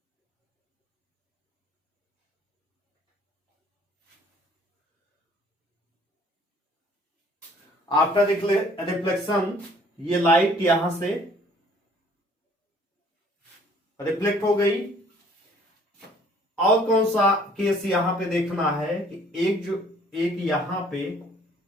आफ्टर रिफ्लेक्शन ये लाइट यहां से रिफ्लेक्ट हो गई। और कौन सा केस यहां पे देखना है कि एक यहां पे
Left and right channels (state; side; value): normal; both; correlation 0.57